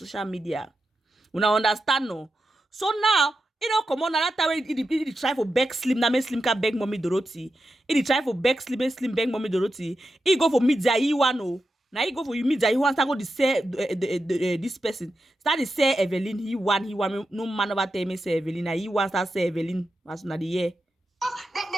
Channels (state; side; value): normal; both; correlation 0.89